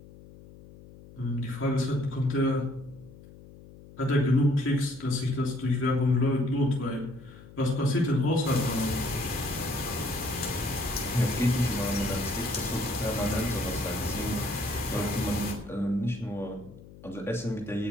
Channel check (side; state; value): left; noise; hum, 19 dB below the sound